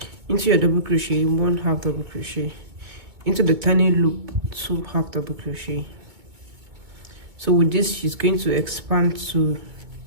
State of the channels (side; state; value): left; late; 2.3 ms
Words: Into your double crochet, 1/2 double crochet. Into the turning loop, 2/2 double crochet. So with this, she's going to expand to